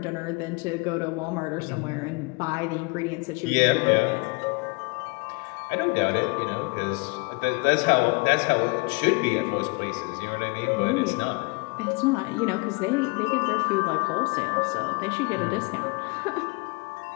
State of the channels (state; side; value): quieter; right; 29.5 dB